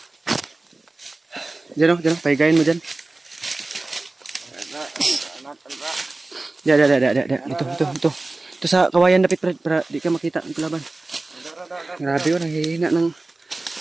Diyan, pahigain mo dyan. Dito. Ito sa kawayan dapit Brad, para di ka makita ng kalaban. Grabe yun, nanghihina ng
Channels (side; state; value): left; quieter; 3.1 dB